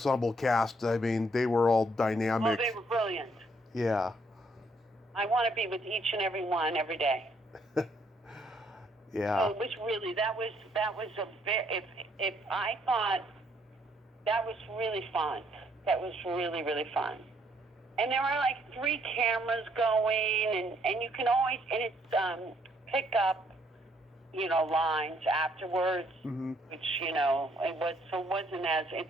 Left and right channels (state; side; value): normal; both; correlation 0.69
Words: cast, I mean, they were all dynamic. Oh, they were brilliant. Yeah. I want to be with each and every one every day. Yeah. So it was really, that was a very, if I thought that was really fun. That was really, really fun. And there were like 3 cameras going, and you can always, and it's pick up, you know, lines afterwards, which, you know,